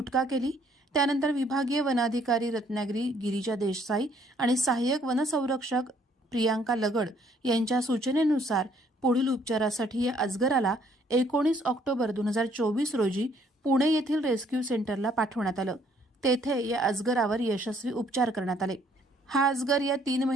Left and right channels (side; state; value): both; normal; correlation 0.64